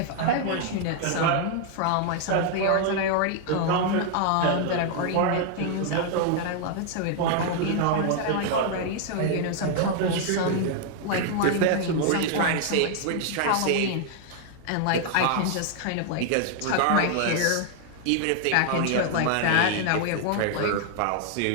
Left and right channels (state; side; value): different; both; correlation 0.00